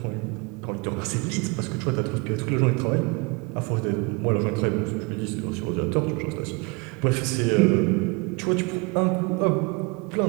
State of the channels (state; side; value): quieter; left; 28.9 dB